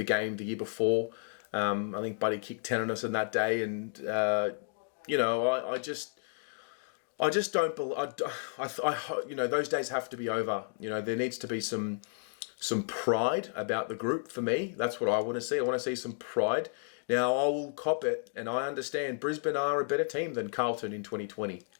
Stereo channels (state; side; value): silent; right; digital silence